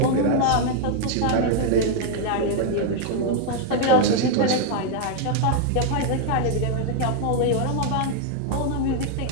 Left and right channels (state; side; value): different; both; correlation 0.00